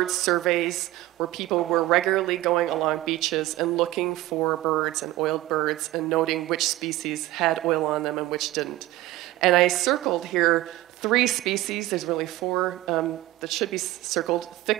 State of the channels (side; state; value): left; quieter; 16.7 dB